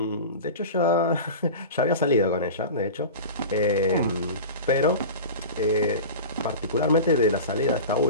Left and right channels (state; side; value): inverted; both; correlation -0.31